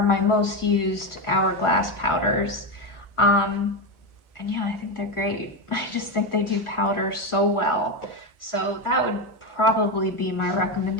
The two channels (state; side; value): late; right; 1.4 ms